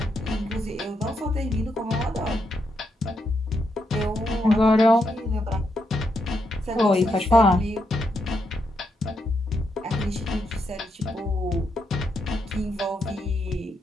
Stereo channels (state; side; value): normal; both; correlation 0.81